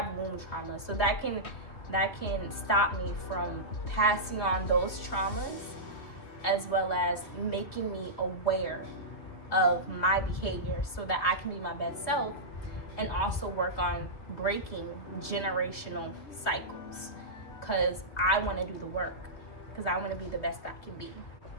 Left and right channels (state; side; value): late; right; 3.1 ms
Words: womb traumas. So that can stop me from passing on those traumas, as well as making me aware of my behavior so that I can be my best self, and also work on breaking generational cycles. Because I want to do the work, because I want to be the best I can be.